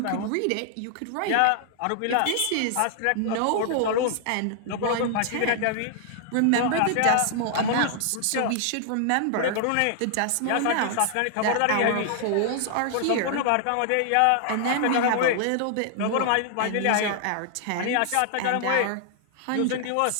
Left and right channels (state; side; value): different; both; correlation -0.01